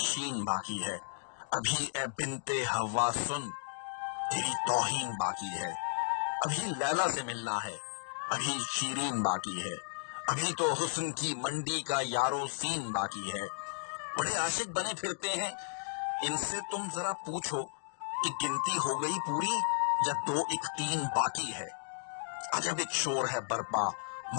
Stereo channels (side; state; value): right; silent; digital silence